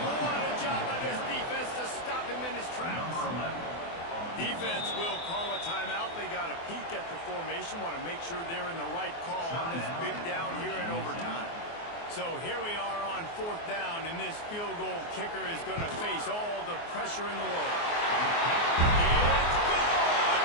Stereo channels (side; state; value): right; late; 24 ms